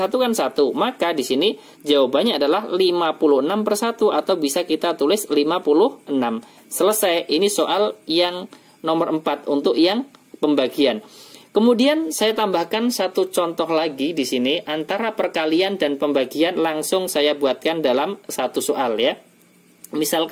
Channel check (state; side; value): identical; both; correlation 1.00